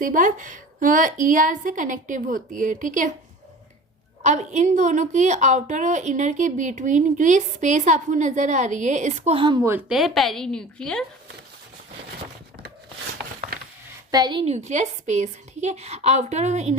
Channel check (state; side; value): normal; both; correlation 0.39